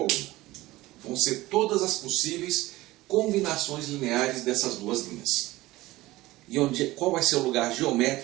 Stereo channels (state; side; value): quieter; left; 18.3 dB